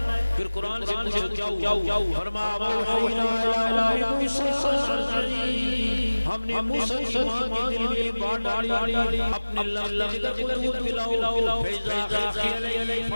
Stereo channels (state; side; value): inverted; both; correlation -1.00